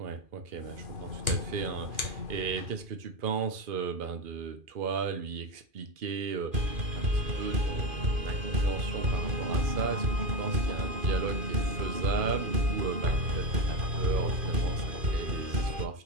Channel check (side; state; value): left; late; 2.5 ms